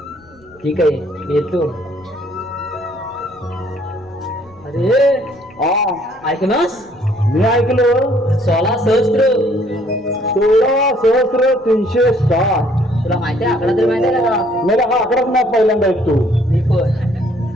ठीक आहे मी येतो. अरे ऐकनास मी ऐकलो 16,360. तुला माहिती आहे आकडा तरी माहिती आहे का? मला हा आकडाच नाही पहिल्यांदा ऐकतो. मी पण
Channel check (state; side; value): noise; left; rumble, 29 dB below the sound